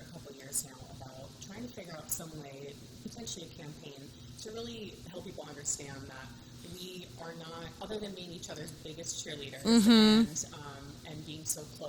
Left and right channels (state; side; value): identical; both; correlation 1.00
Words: couple years now about trying to figure out some way, potentially a campaign, to really help people understand that we are not, other than being each other's biggest cheerleaders and being so